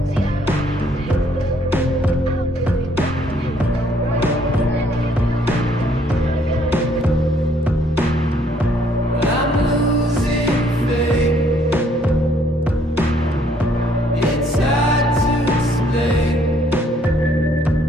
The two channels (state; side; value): normal; both; correlation 0.65